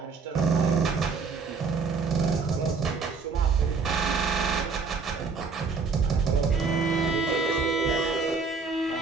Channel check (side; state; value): left; quieter; 4.8 dB